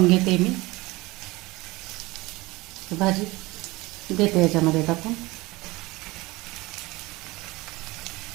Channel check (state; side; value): quieter; left; 21.4 dB